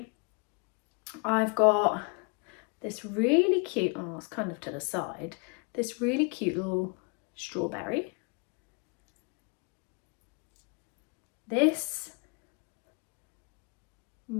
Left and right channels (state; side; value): quieter; right; 33.3 dB